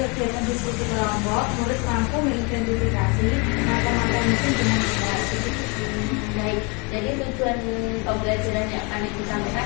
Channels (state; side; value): quieter; right; 31.1 dB